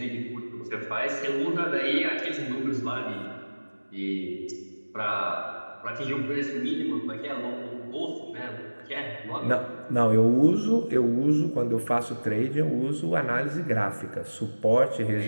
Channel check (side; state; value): both; inverted; correlation -1.00